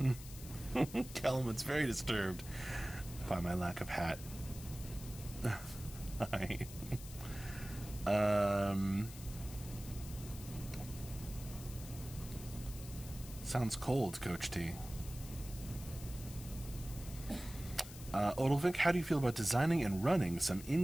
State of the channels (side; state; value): left; noise; hiss, 14 dB below the sound